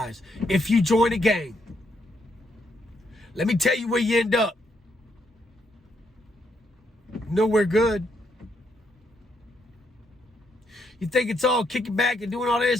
If you join a gang, let me tell you where you end up. Nowhere good. You think it's all kicking back and doing all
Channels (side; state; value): both; normal; correlation 0.76